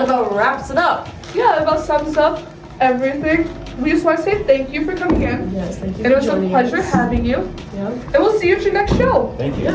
about wraps it up. Yeah, that about sums up everything. We just want to say thank you for coming in. Yes, thank you And it for was a joining pleasure us. having you. Yeah. And we'll see you at your next show. Thank you. It's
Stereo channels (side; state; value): both; identical; correlation 1.00